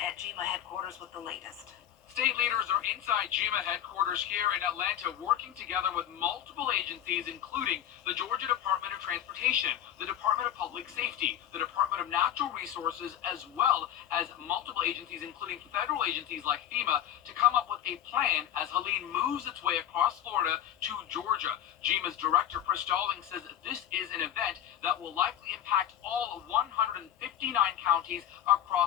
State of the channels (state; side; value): quieter; right; 11.0 dB